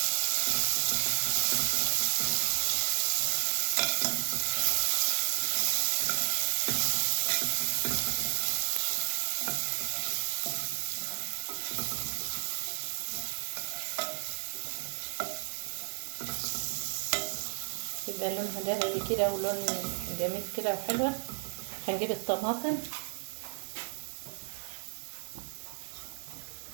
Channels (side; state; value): left; silent; 56 dB below the other